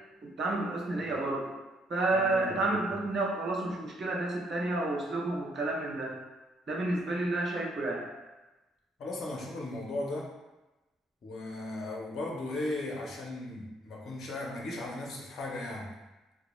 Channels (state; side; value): normal; both; correlation 0.68